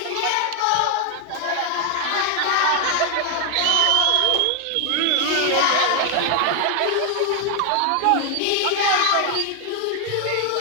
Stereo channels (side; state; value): both; different; correlation 0.00